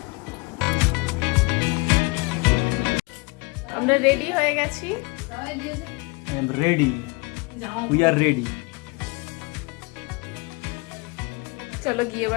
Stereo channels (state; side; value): quieter; right; 27.9 dB